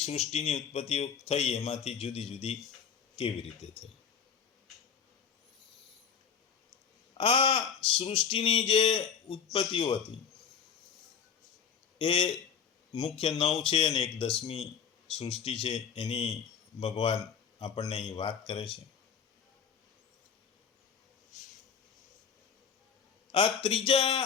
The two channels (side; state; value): right; quieter; 7.1 dB